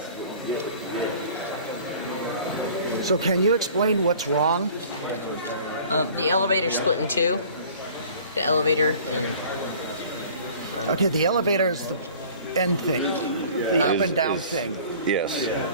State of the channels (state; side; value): inverted; both; correlation -0.48